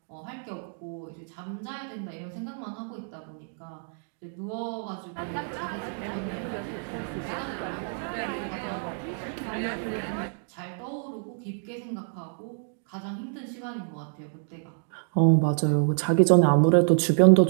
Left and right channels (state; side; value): silent; left; 59 dB below the other